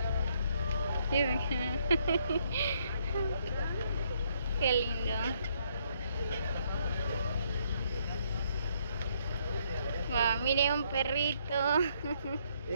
Miren. Qué lindo. Wow, mire un perrito.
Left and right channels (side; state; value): both; inverted; correlation -0.70